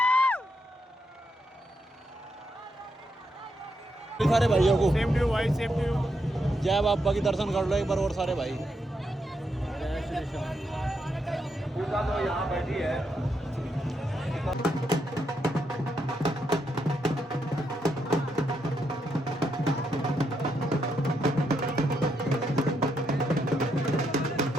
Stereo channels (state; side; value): normal; both; correlation 0.80